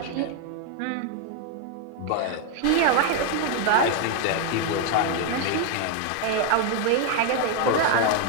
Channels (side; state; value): both; different; correlation 0.01